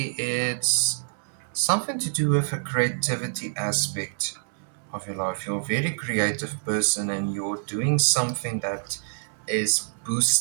it's something to do with a creativity aspect of your life. You're a very creative person and you're doing something that is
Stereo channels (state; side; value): silent; left; 61 dB below the other